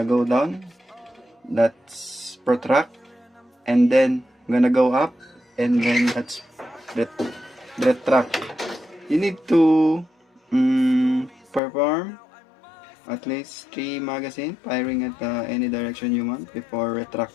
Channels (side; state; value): right; drops out; at 11.6 s